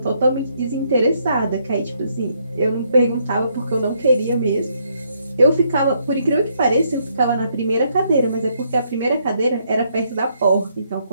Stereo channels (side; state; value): both; inverted; correlation -0.72